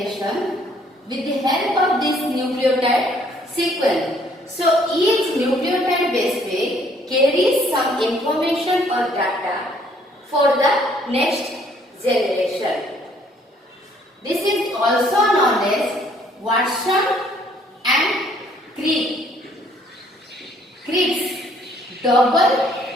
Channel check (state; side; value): normal; both; correlation 0.63